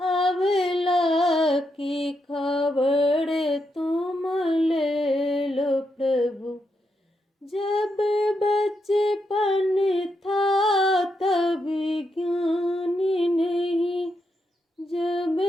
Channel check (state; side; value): normal; both; correlation 0.82